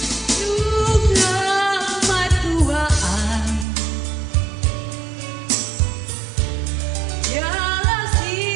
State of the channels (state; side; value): drops out; left; at 3.7 s